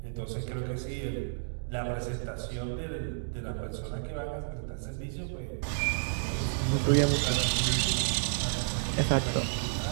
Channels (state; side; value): silent; left; digital silence